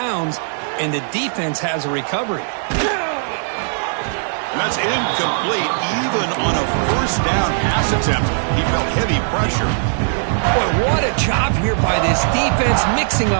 and the defense has a recovery. And that's incomplete, even on a first down pass attempt. He felt heavy pressure. Boy, what a job here by this defense, mixing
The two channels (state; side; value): silent; left; digital silence